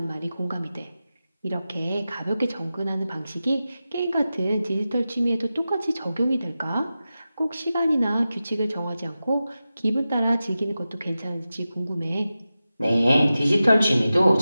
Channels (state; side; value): inverted; both; correlation -0.93